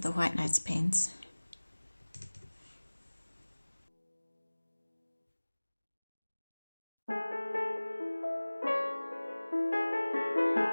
the White Nights paints.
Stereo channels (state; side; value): inverted; both; correlation -1.00